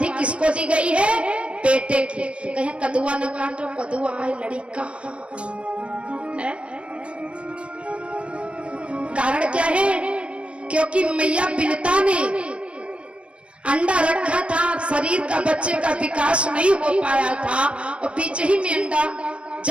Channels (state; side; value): late; left; 0.060 ms